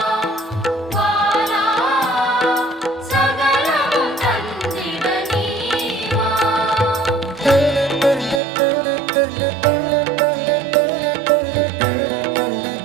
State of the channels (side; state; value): left; drops out; at 8.4 s